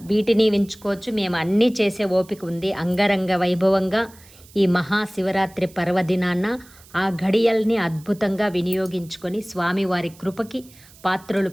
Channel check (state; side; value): noise; right; hiss, 24 dB below the sound